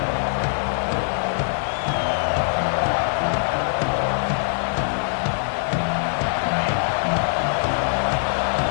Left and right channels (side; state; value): right; silent; digital silence